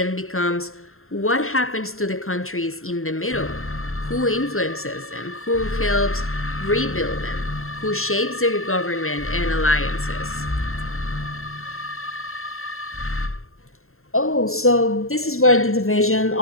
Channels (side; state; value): right; late; 0.62 ms